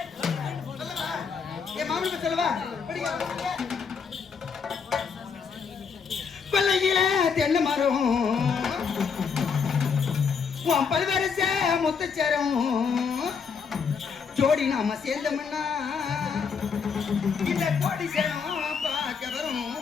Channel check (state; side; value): quieter; right; 6.0 dB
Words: என் மாமனுக்கு சொல்லவா? கொல்லையில தென்னை மரம் உன் பல்வரச முத்துச்சரம் ஜோடி நாம சேர்ந்தோம்னா இந்த கோடி சரம் பார்க்க வரும்.